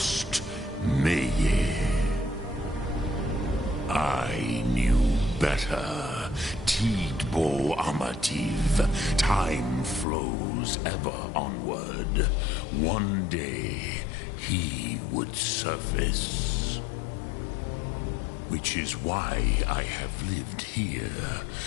Meye. I knew better. Tidbo Amativ. Time flows ever onward. One day, he would surface. Which is why I have lived here.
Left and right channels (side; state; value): right; drops out; at 10.1 s